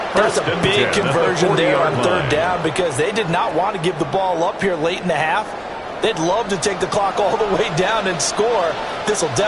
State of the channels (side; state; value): both; identical; correlation 1.00